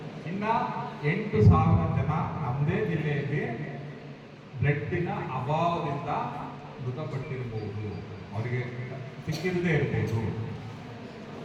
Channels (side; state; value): both; identical; correlation 1.00